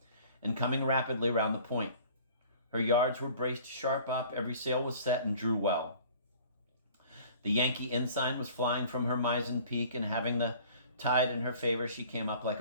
and coming rapidly round the point. Her yards were braced sharp up, every sail was set and drew well. The Yankee ensign was flying from her mizzen peak, and having the tide in her favor, she came up like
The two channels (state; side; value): inverted; both; correlation -0.49